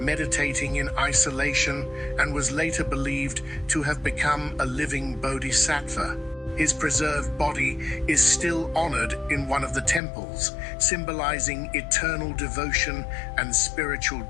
in isolation and was later believed to have become a living bodhisattva. His preserved body is still honored in one of the temples, symbolizing eternal devotion and spiritual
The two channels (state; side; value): drops out; right; at 10.0 s